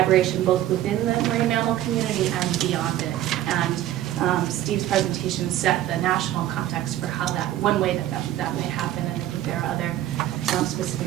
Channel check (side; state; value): left; quieter; 13.2 dB